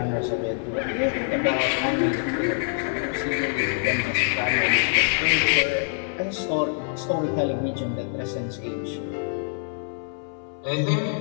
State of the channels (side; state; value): right; silent; 62 dB below the other